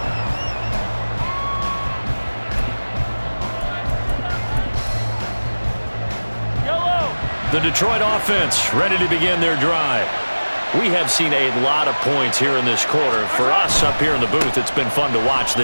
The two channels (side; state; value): both; inverted; correlation -1.00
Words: The Detroit offense ready to begin their drive. We have seen a lot of points here in this quarter. For us up here in the booth, it's been fun to watch.